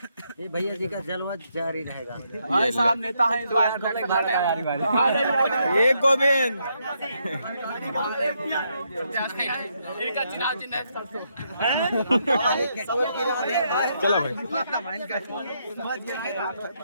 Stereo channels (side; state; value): both; inverted; correlation -0.77